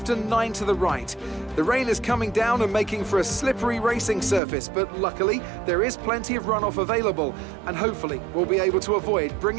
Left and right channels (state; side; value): drops out; left; at 4.4 s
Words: and 9 to the right. The rain is coming down and making for a slippery racing surface, but luckily there is plenty of runoff available, and hopefully we'll be able to avoid